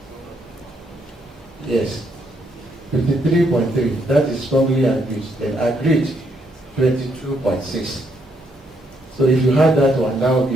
Yes. 53.3, that is strongly agreed. Then agreed, 22.6. So if you had that one, that would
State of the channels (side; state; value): both; normal; correlation 0.74